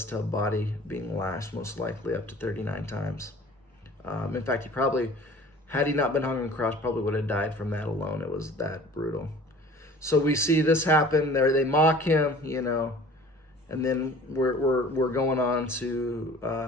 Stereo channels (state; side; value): normal; both; correlation 0.46